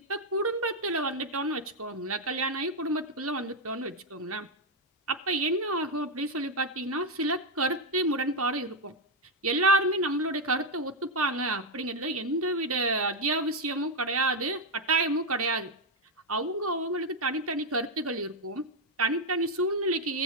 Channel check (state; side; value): normal; both; correlation 0.03